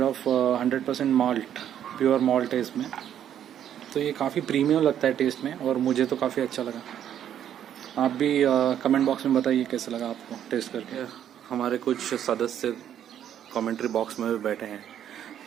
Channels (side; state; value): left; quieter; 10.1 dB